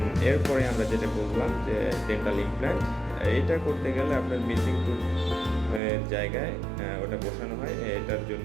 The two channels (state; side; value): drops out; left; at 5.8 s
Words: এরপরে আমরা যেটা বললাম যে ডেন্টাল ইমপ্ল্যান্ট, এটা করতে গেলে আপনার মিসিং টুথ জায়গায় ওটা বসানো হয়, এটার জন্য